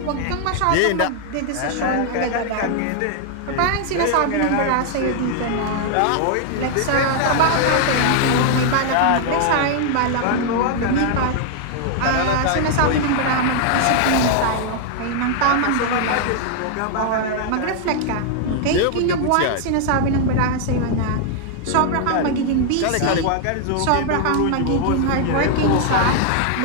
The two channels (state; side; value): different; both; correlation 0.00